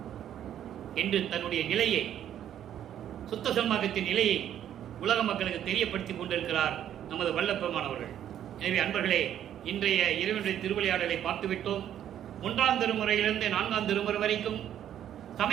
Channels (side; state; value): left; quieter; 10.5 dB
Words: என்று தன்னுடைய நிலையை, சுத்த சன்மார்க்கத்தின் நிலையை உலக மக்களுக்கு தெரியப்படுத்திக் கொண்டிருக்கிறார் நமது வல்லப்பெருமானவர்கள். எனவே அன்பர்களே, இன்றைய இறைவனுடைய திருவிளையாடலை பார்த்துவிட்டோம். 1ஆம் திருமுறையிலிருந்து 4ஆம் திருமுறை வரைக்கும்